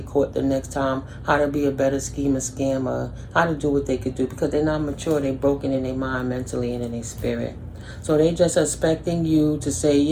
caught the next time, how to be a better schemer, scammer, how to do what they could do, because they're not mature, they're broken in their mind, mentally, and in their spirit. So they just expecting you to say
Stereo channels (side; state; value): both; identical; correlation 1.00